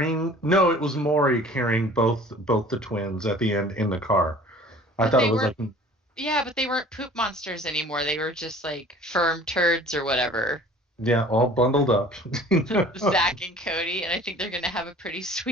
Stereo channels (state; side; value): normal; both; correlation 0.47